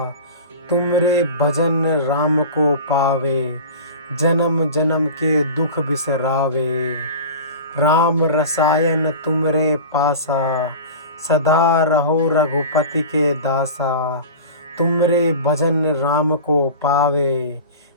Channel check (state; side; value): inverted; both; correlation -0.35